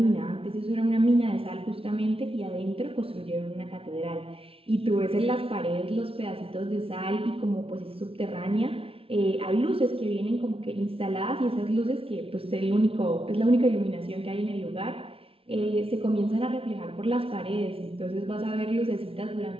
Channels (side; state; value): left; late; 0.27 ms